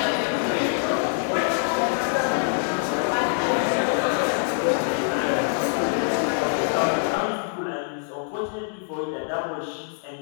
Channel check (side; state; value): right; silent; 62 dB below the other